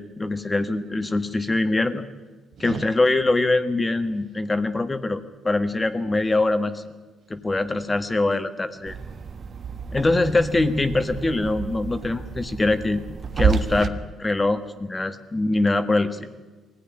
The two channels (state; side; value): normal; both; correlation 0.93